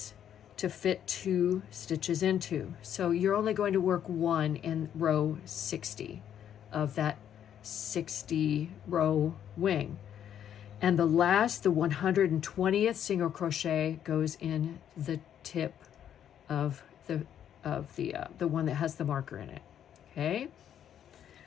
to fit 2 stitches into. So you're only going to work 1 in row 60 of that 60 row wing. And the last, the 120th single crochet goes in the tip of the one that has the marker in it. Okay.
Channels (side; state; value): right; quieter; 9.7 dB